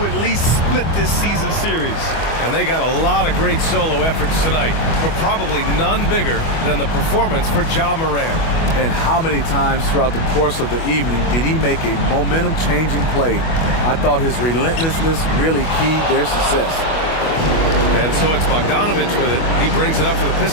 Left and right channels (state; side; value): late; right; 25 ms